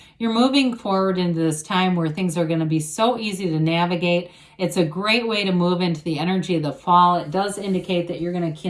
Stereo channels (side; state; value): both; identical; correlation 1.00